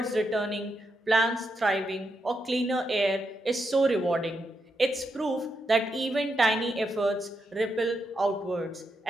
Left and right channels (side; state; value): both; normal; correlation 0.83